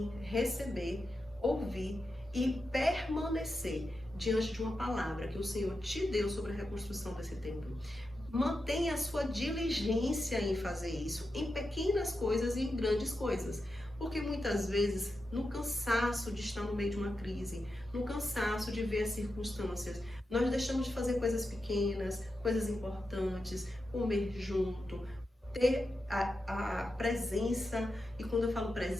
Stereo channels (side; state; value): both; normal; correlation 0.89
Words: receber, ouvir e permanecer diante de uma palavra que o Senhor te deu sobre a reconstrução desse templo. Mantenha a sua diligência em fazer isso, em pequenas coisas e em grandes coisas. Porque muitas vezes, no cansaço de estar no meio de uma crise, no cansaço de ver as circunstâncias, nós deixamos de fazer coisas pequenas, coisas importantes, comer junto, ter a presença. E quando eu falo